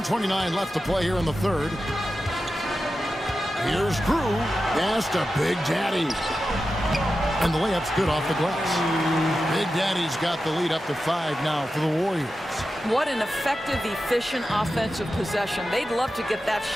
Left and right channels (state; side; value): normal; both; correlation 0.92